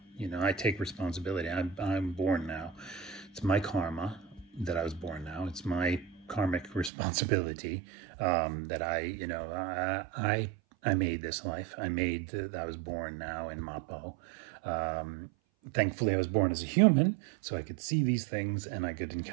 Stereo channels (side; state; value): left; drops out; at 6.9 s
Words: I take responsibility. I'm born now. It's my karma that I was born now. It's my karmic responsibility that I made this life. I made that I was born now in Mappo. Thankfully, I was born as a human, so I could see these things and I could